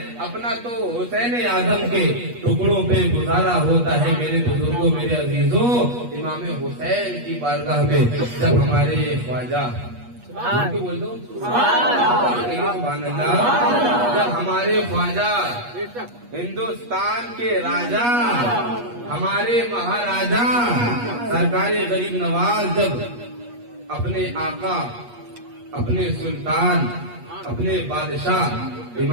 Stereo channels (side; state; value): left; late; 8.3 ms